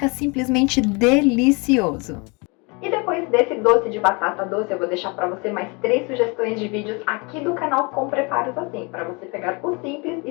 simplesmente delicioso. E depois desse doce de batata doce, eu vou deixar para você mais 3 sugestões de vídeos aqui do canal com preparos assim, para você pegar o simples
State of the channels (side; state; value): right; quieter; 29.9 dB